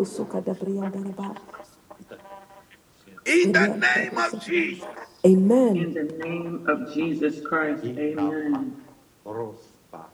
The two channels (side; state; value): both; identical; correlation 1.00